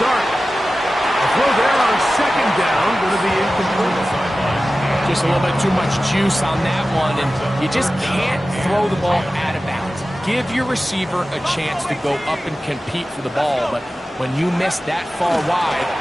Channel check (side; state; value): both; normal; correlation 0.95